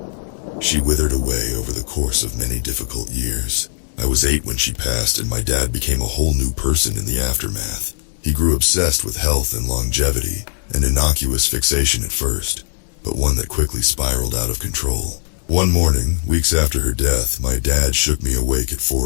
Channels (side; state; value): right; silent; digital silence